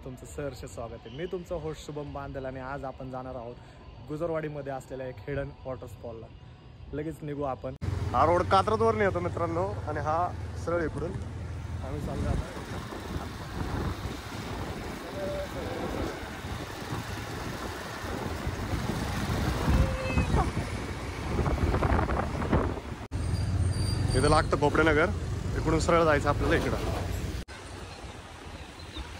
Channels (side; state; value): both; identical; correlation 1.00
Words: तुमचं सहर्ष स्वागत आहे. मी तुमचा होस्ट शुभम बांदल आणि आज आपण जाणार आहोत गुजरवाडीमध्ये असलेल्या एक हिडन वॉटरफॉलला. लगेच निघू आपण. हा रोड कात्रजवरून येतो मित्रांनो आणि हा सरळ इकडून आम्ही चाललो आता. इथं लागतं भोपडेनगर, इकडून सरळ जायचं आपल्याला इकडं.